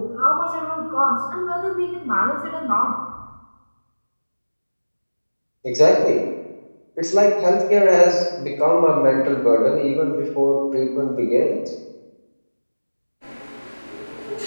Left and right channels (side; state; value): both; inverted; correlation -1.00